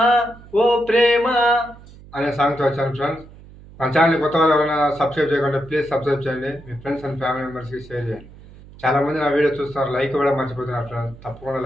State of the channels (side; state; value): right; noise; hum, 20 dB below the sound